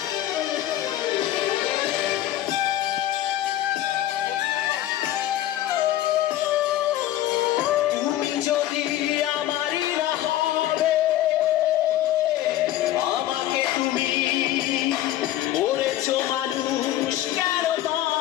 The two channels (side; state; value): right; quieter; 13.6 dB